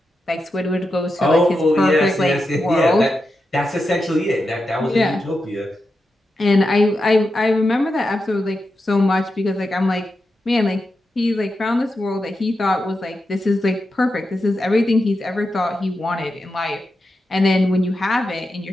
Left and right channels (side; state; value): both; normal; correlation 0.88